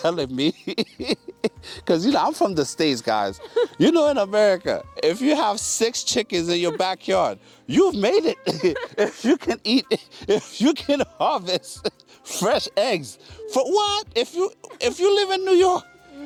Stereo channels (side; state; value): both; identical; correlation 1.00